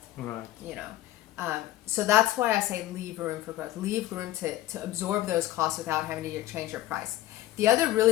Right. You know, so that's why I say leave room for growth. Leave room to absorb those costs without having to change your price. The other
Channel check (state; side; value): quieter; right; 15.0 dB